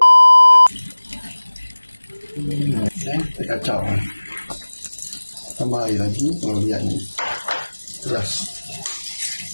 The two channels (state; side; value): inverted; both; correlation -1.00